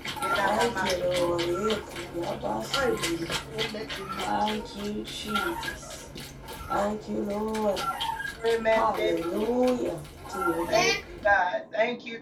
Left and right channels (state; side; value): identical; both; correlation 1.00